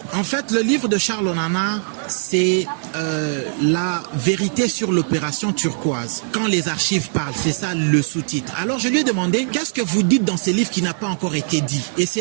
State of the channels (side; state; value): left; silent; 65 dB below the other